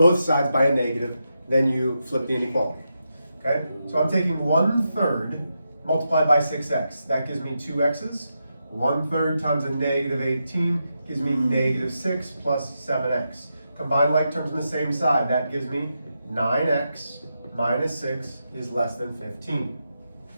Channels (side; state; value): both; inverted; correlation -0.86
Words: sides by a negative, then you flip the inequality. Okay? So I'm taking 1/3 multiplied by 6x. That gives me 2x's. 1/3 times a negative 18 gives me negative 6 plus 7x. Combine like terms on the same side. That gives me 9x minus 6 is less than 15.